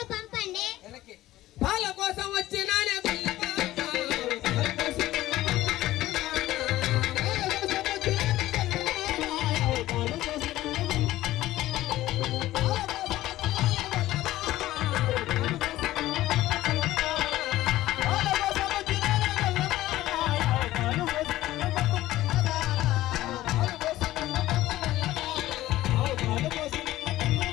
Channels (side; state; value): right; quieter; 15.7 dB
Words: పంపండి. పాల కోసం వచ్చినానే